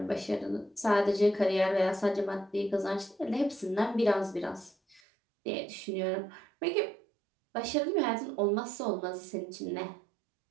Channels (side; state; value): left; drops out; at 5.0 s